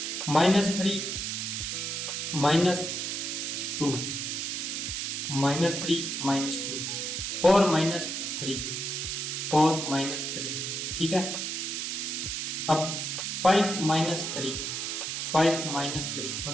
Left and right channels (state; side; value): noise; right; hiss, 3 dB below the sound